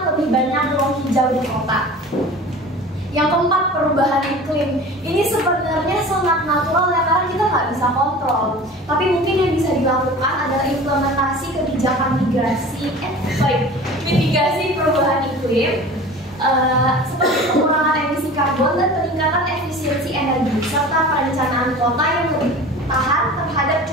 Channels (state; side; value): normal; both; correlation 0.39